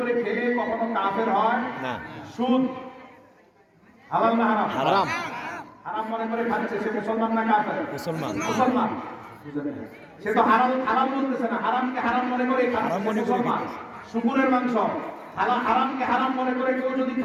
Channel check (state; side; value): identical; both; correlation 1.00